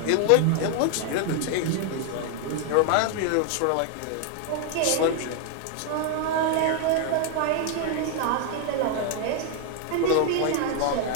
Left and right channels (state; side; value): different; both; correlation 0.00